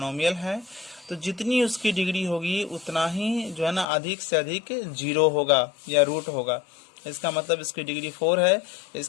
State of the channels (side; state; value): right; drops out; at 3.9 s